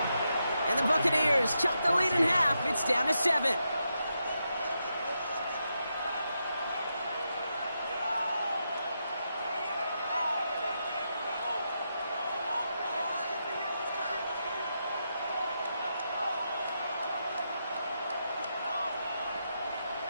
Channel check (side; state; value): both; inverted; correlation -0.84